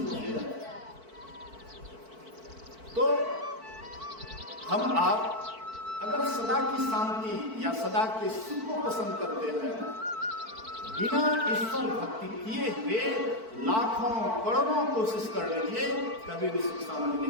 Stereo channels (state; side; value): late; left; 4.5 ms